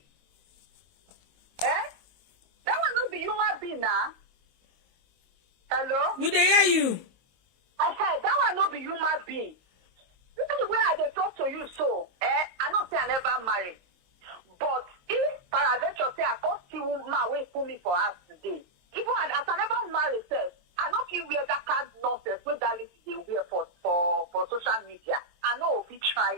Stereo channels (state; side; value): late; left; 23 ms